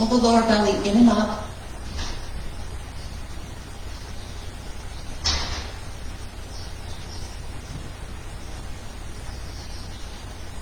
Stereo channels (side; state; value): both; identical; correlation 1.00